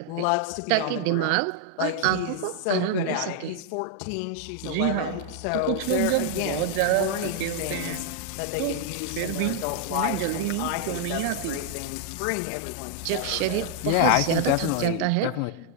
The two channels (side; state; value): both; different; correlation 0.00